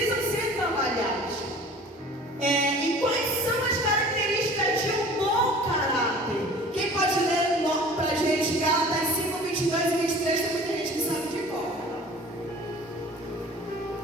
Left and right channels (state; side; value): normal; both; correlation 0.45